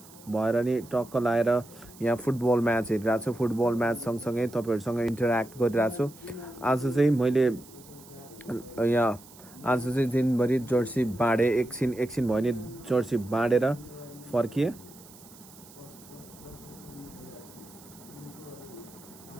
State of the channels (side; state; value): right; noise; hiss, 21 dB below the sound